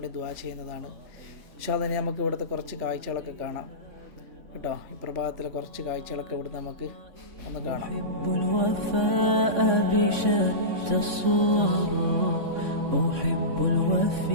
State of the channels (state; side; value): late; left; 3.6 ms